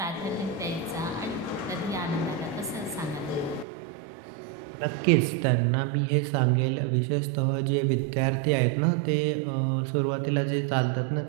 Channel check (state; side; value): drops out; left; at 3.7 s